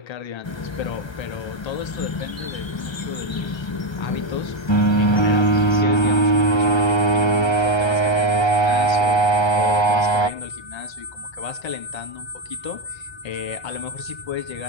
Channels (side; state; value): right; late; 1.3 ms